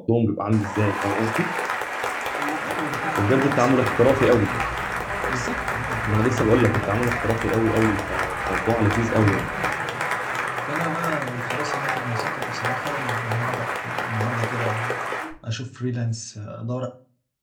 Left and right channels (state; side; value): identical; both; correlation 1.00